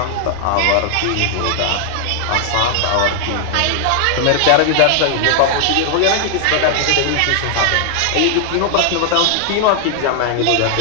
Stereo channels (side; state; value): both; different; correlation 0.00